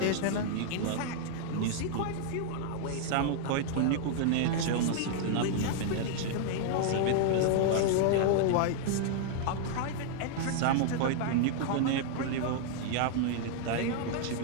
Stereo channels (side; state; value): both; different; correlation -0.01